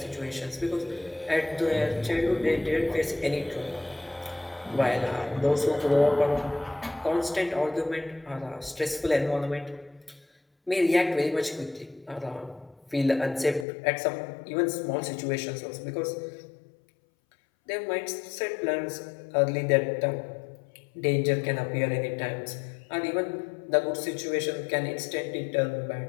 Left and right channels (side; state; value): right; drops out; at 13.7 s